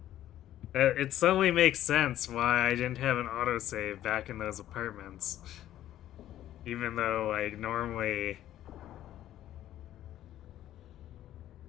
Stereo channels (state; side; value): quieter; right; 12.7 dB